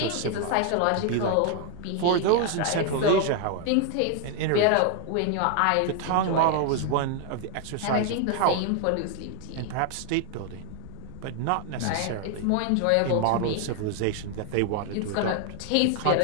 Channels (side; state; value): both; different; correlation 0.00